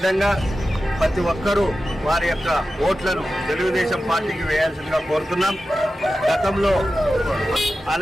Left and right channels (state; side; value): normal; both; correlation 0.93